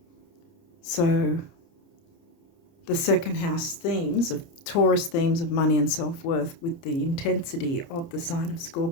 So the 2nd house themes of Taurus themes of money and self-worth with the intensity of the sign of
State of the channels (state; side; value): late; right; 29 ms